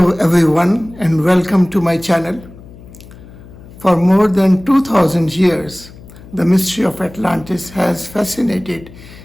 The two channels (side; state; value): left; noise; hum, 19 dB below the sound